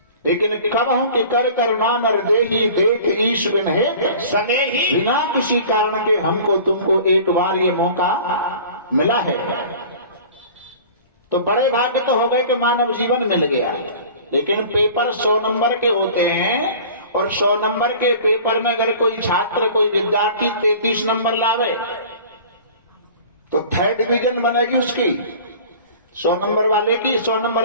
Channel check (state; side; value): inverted; both; correlation -0.43